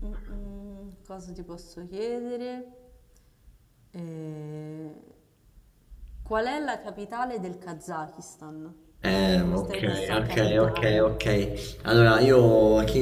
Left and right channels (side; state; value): both; identical; correlation 1.00